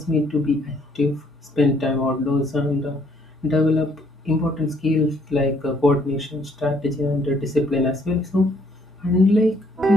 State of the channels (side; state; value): both; normal; correlation 0.66